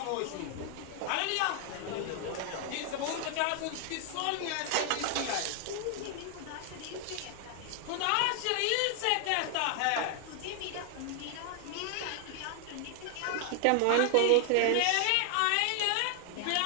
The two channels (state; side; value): different; both; correlation 0.00